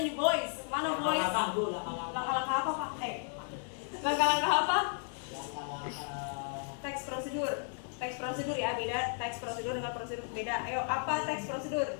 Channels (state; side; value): silent; right; 55 dB below the other